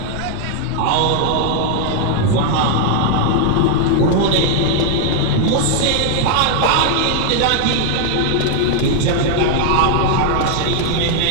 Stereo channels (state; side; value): different; both; correlation 0.00